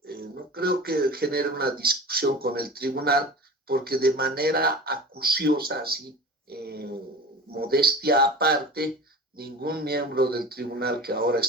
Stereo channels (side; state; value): both; normal; correlation 0.36